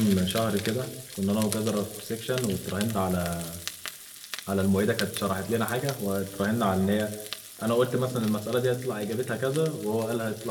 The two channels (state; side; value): identical; both; correlation 1.00